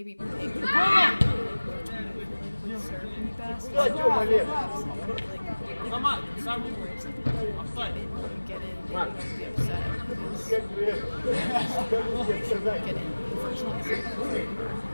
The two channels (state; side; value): inverted; both; correlation -1.00